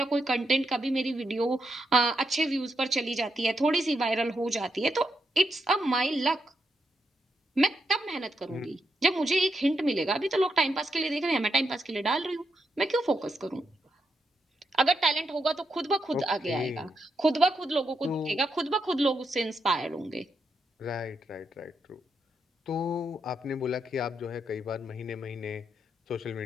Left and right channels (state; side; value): normal; both; correlation 0.82